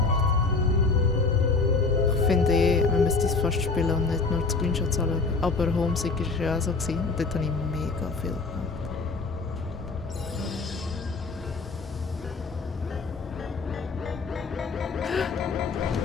Ich finde man müsste es fast spielen und nicht nur die Screenshots anschauen. Aber Homesick war ja auch so. Gewesen. Und dort habe ich mega viel gemacht.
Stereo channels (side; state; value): right; quieter; 4.1 dB